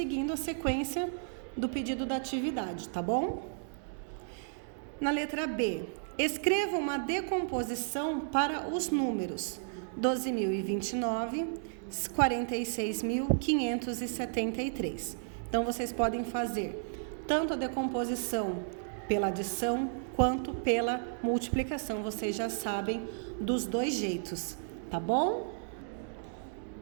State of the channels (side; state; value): left; silent; digital silence